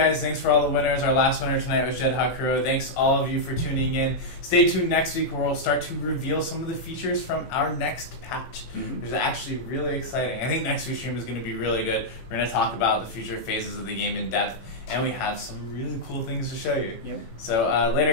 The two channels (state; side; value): late; right; 18 ms